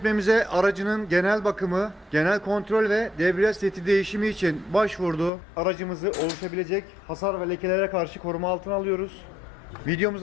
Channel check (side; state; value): right; drops out; at 5.3 s